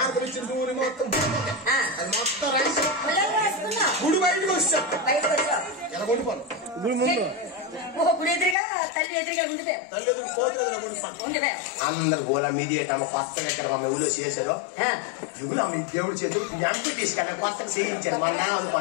ఇచ్చిన దూరి మొత్తం అది మొత్తం రాసి గుడి బయటకు వచ్చాను ఎలా కొనుక్కోను గుడి ఎదురుగా తల్లి ఎదురుగా తల్లి ఎదురు పోతున్నా కొనుక్కోను అందరు గోళ మీడియేటమ్మ కొత్తగా ఇక్కడ మా ఊళ్ళో చేసారు యుగులు మీ దేవుడి చేతులు వెంకటేష్ కదా కొత్తగా చేయించాను మా నా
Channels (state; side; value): drops out; right; at 8.6 s